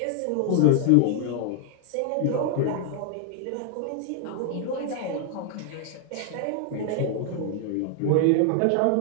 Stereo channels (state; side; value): different; both; correlation 0.00